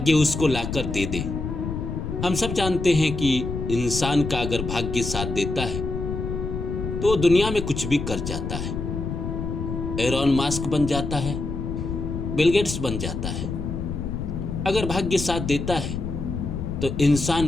उसको लाकर दे दे। हम सब जानते हैं कि इंसान का अगर भाग्य साथ देता है तो दुनिया में कुछ भी कर जाता है। एलोन मस्क बन जाता है, बिल गेट्स बन जाता है। अगर भाग्य साथ देता है तो इंसान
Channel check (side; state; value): left; noise; rumble, 4 dB below the sound